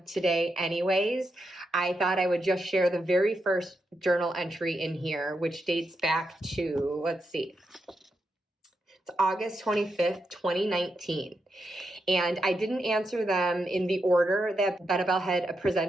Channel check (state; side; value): normal; both; correlation 0.84